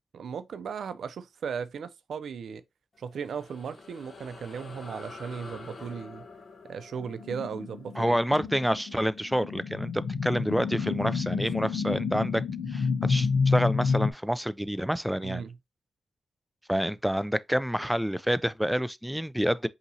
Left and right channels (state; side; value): normal; both; correlation 0.92